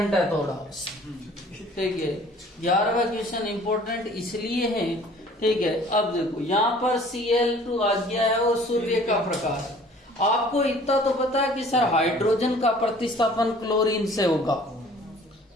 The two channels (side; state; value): both; normal; correlation 0.51